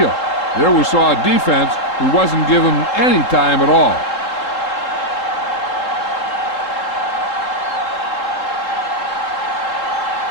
There we saw a defense who wasn't given any time at all.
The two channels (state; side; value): late; right; 3.7 ms